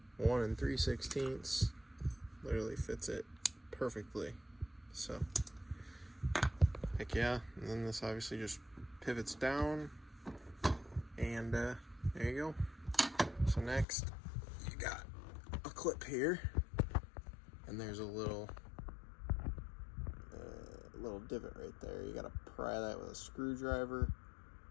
1 3/16. Literally fits it perfectly. So, heck yeah. And then this obviously just pivots down, and there you go. So next, you got a clip here, and there's a little divot right there. You gotta pry that with a screwdriver,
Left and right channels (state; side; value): drops out; right; at 13.9 s